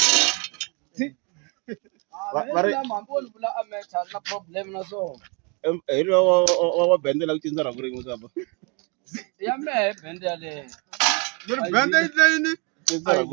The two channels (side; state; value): left; quieter; 32.5 dB